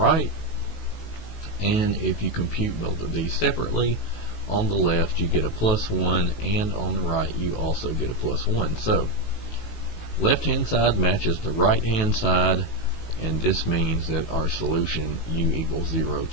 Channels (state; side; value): late; right; 18 ms